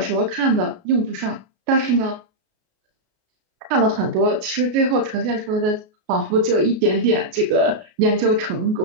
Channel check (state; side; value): late; left; 33 ms